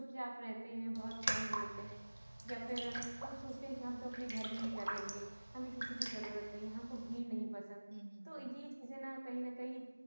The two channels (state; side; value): inverted; both; correlation -1.00